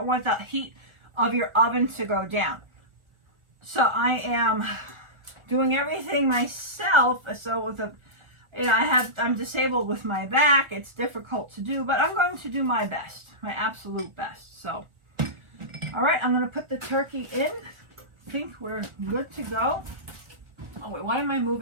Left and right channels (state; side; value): late; left; 1.4 ms